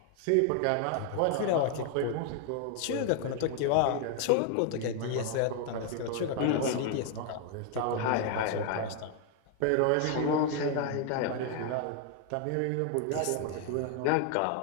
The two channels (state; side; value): different; both; correlation 0.00